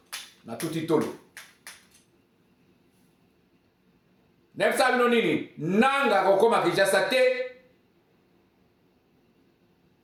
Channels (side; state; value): both; identical; correlation 1.00